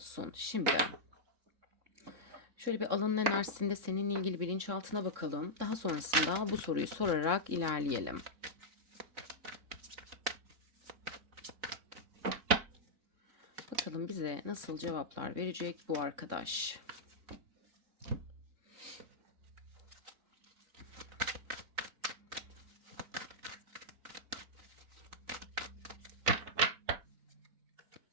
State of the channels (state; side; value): late; left; 3.6 ms